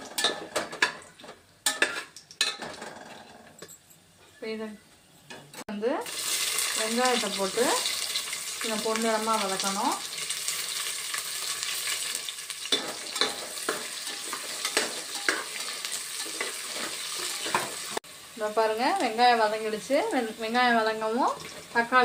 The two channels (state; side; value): identical; both; correlation 1.00